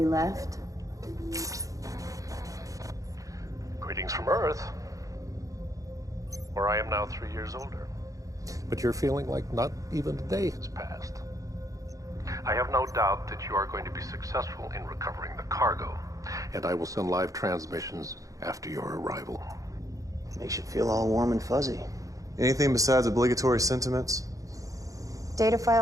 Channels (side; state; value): left; late; 0.16 ms